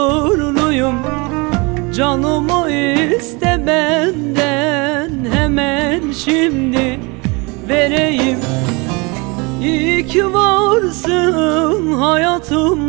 Canımı iste benden, hemen şimdi vereyim. İyi ki varsın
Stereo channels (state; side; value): quieter; left; 28.1 dB